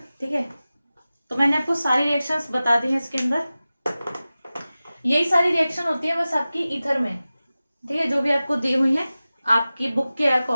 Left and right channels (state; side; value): inverted; both; correlation -0.96